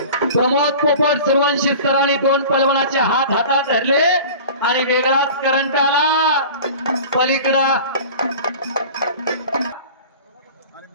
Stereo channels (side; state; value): both; inverted; correlation -0.39